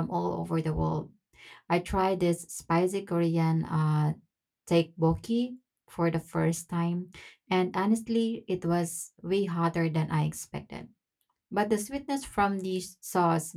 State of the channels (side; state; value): both; identical; correlation 1.00